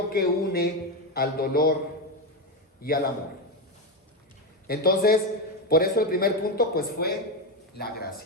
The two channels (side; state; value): both; normal; correlation 0.11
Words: que une al dolor y al amor. Entonces, por eso el primer punto pues fue la